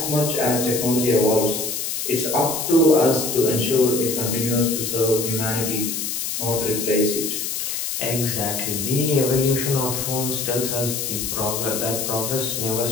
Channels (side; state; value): left; noise; hiss, 3 dB below the sound